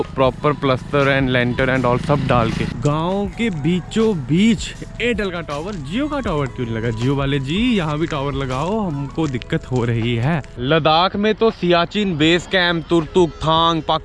proper plaster and lintel and all सब डाल के। गाँव के बीचों बीच एयरटेल का टावर, जियो का टावर क्यों नहीं लगा? जियो वाले जी यहाँ भी टावर लगाओ, हमको दिक्कत हो रही है। लद्दाख में तो सियाचिन बेस कैंप, तुर्तुक, थांग,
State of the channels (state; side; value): identical; both; correlation 1.00